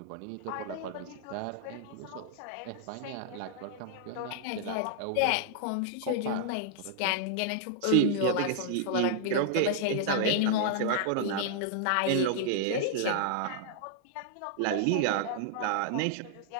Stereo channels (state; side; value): different; both; correlation -0.01